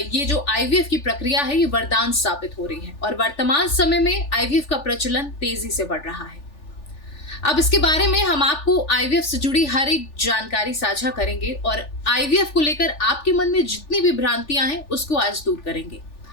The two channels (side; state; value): right; late; 3.4 ms